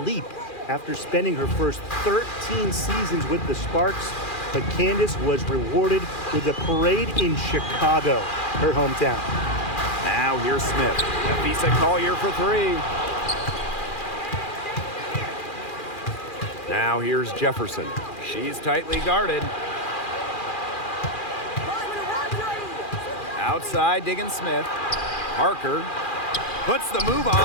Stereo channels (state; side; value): late; right; 2.4 ms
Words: leap after spending her first 13 seasons with the Sparks, but Candace was rewarded with a parade in Chicago, her hometown. Now here's Smith. Nafisa Collier for three. Now here's Jefferson. She's tightly guarded. Outside, Diggin Smith. Parker puts the move